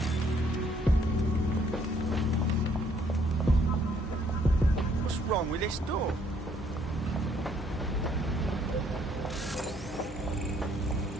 What's wrong with this door?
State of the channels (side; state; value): both; normal; correlation 0.65